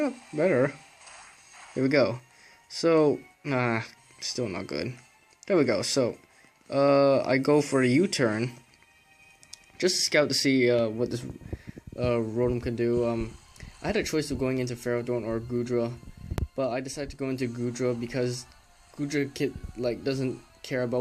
Here we go. So, still not good. There we go. So, I go for a U-turn. Just to scout to see what this Rotom can do. I had a choice of going into Ferrodon or Goodra, but I decided to go into Goodra because Goodra doesn't care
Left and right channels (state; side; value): identical; both; correlation 1.00